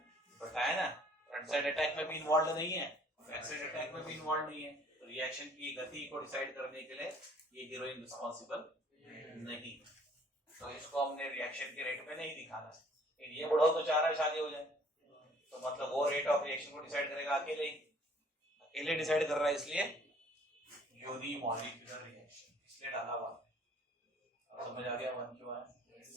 बताया ना, फ्रंट साइड अटैक में भी इन्वॉल्व नहीं है, बैक साइड अटैक में भी इन्वॉल्व नहीं है, तो रिएक्शन की गति को डिसाइड करने के लिए ये हीरोइन रिस्पॉन्सिबल नहीं। तो इसको हमने रिएक्शन के रेट पे नहीं दिखाना। ये बुढ़ा तो चाह रहा है शादी हो जाए, तो मतलब वो रेट ऑफ रिएक्शन को डिसाइड करेगा अकेले डिसाइड कर रहा है, इसलिए यूनिमॉलिक्यूलर रिएक्शन इसलिए डाला हुआ। अब समझ आ गया वन क्यों आया?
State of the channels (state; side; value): normal; both; correlation 0.57